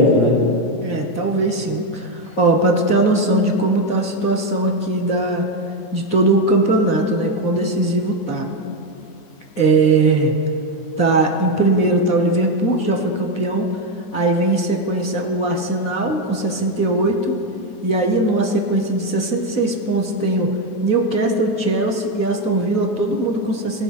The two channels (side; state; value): right; late; 9.5 ms